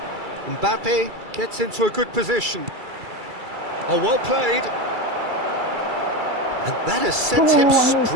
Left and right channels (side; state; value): left; late; 2.3 ms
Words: Mbappe gets into a good position. Oh, well played. And that has sent him